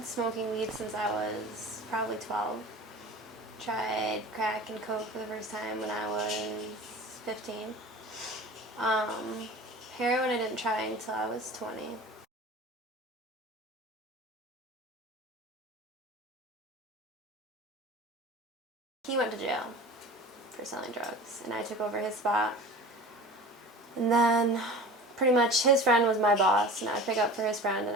smoking weed since I was probably 12. Tried crack and coke for the first time when I was 15. Um, Heroin I didn't try until I was 20. He went to jail for selling drugs, and I took over his spot. And then pretty much his friend was my boss, and I would pick up for his friend and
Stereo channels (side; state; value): both; normal; correlation 0.38